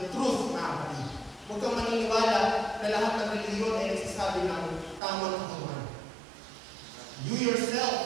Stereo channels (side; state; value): left; drops out; at 5.0 s